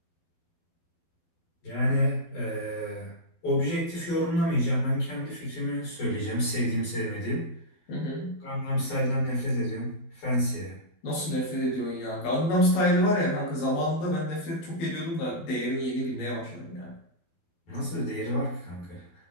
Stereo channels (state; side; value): late; right; 12 ms